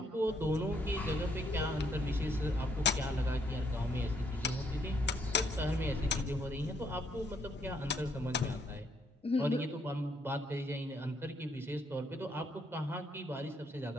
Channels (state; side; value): normal; both; correlation 0.71